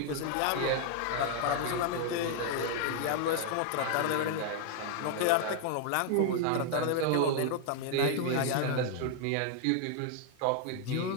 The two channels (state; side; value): different; both; correlation 0.00